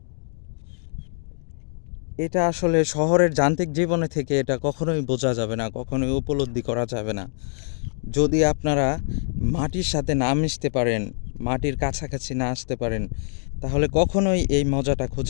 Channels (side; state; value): right; silent; digital silence